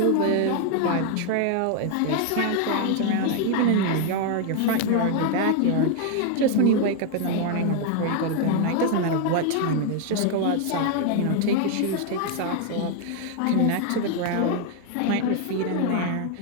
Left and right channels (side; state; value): both; different; correlation 0.01